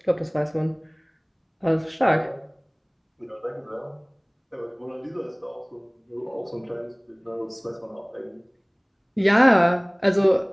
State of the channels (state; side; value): identical; both; correlation 1.00